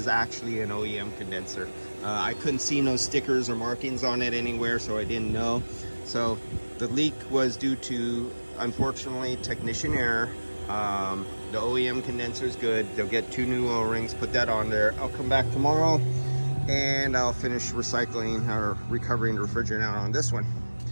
actually an OEM condenser. I couldn't see no stickers or markings on it anywhere, so I didn't know. So the leak was due to, unfortunately, technician error. The OEM condenser is good. They'll get 2 new O-rings, put that on there. I'll come back tomorrow and I'll finish recycling or recovering the refrigerant out on this one.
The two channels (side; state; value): both; inverted; correlation -1.00